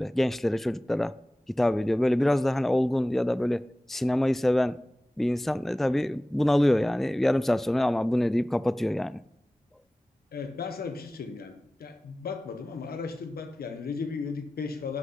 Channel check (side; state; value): both; normal; correlation 0.97